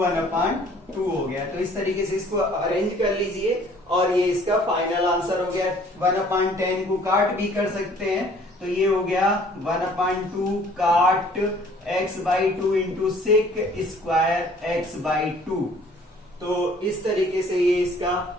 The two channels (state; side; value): normal; both; correlation 0.55